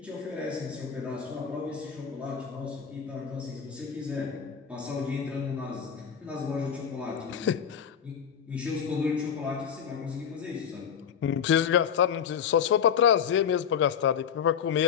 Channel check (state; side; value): quieter; right; 7.7 dB